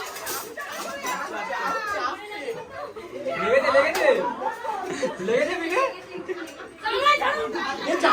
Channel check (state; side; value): identical; both; correlation 1.00